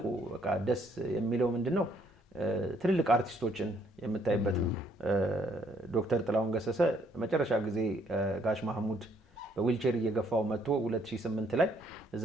በቃ ደስ የሚለው ምንድን ነው ትልልቅ አርቲስቶችን የምታይበት ነው። ዶክተር ጥላሁን ገሰሰ መጨረሻ ጊዜ ጋሽ ማህሙድ በዊልቸር እየገፋው መጥቶ 2008 ላይ እዛ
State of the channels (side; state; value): both; normal; correlation 0.68